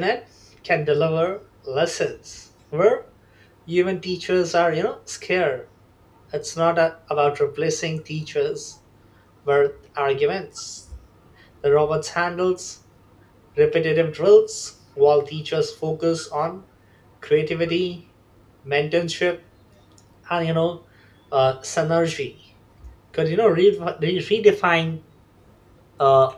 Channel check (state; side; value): identical; both; correlation 1.00